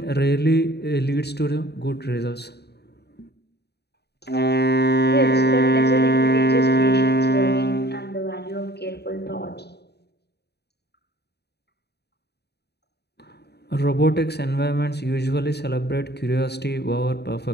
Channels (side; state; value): right; late; 0.48 ms